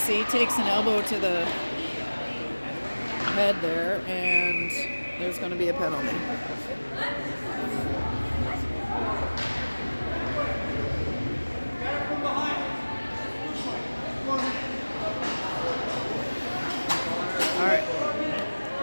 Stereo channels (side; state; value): both; inverted; correlation -1.00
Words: takes an elbow to the head there, and there's going to be a penalty. All right.